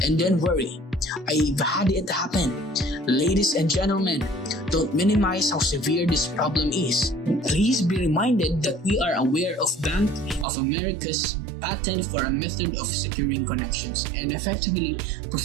and then worry. I've had it happen. Ladies and gentlemen, don't minimize how severe this problem is. Please be reminded that we are aware of Bank of America's patent for a method of securing connections and effectively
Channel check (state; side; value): drops out; left; at 10.5 s